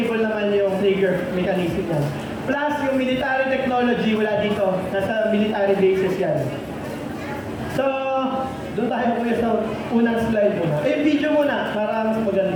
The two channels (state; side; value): identical; both; correlation 1.00